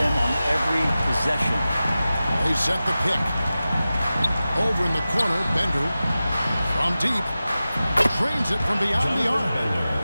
on every possession. They set the pick. Over in the corner, Bender. From deep. Trains it from beyond the arc.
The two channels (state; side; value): inverted; both; correlation -0.95